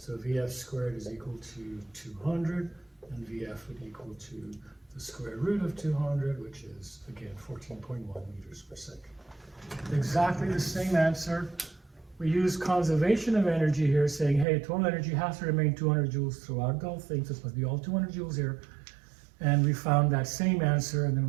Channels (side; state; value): left; drops out; at 14.5 s